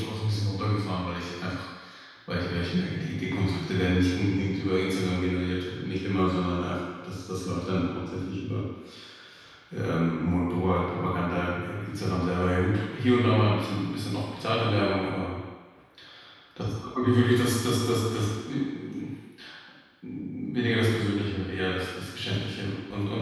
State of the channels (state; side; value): identical; both; correlation 1.00